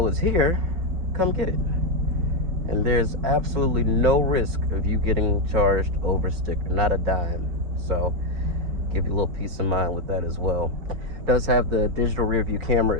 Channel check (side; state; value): left; late; 5.8 ms